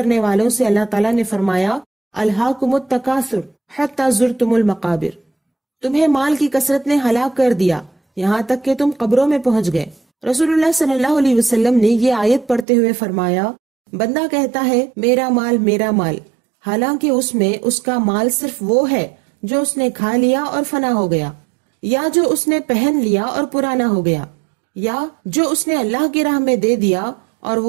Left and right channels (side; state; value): left; drops out; at 12.7 s